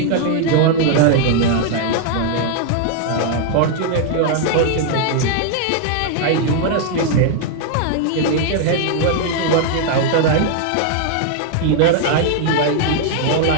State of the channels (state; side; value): different; both; correlation 0.00